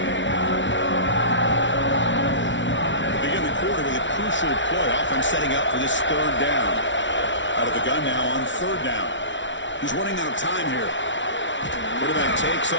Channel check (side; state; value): right; late; 0.55 ms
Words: Setting up for this third down. Out of the gun now on third down. He's running out of time here. Quarterback takes